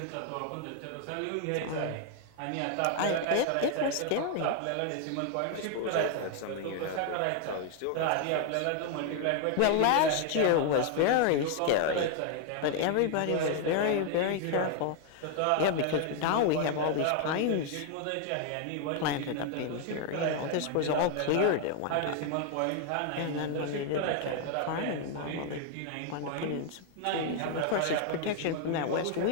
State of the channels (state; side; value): different; both; correlation 0.00